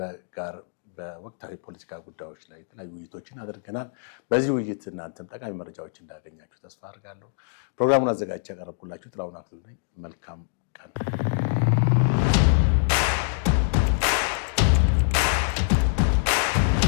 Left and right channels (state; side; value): silent; right; digital silence